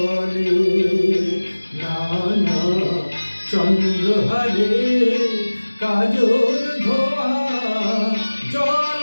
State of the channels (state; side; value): inverted; both; correlation -1.00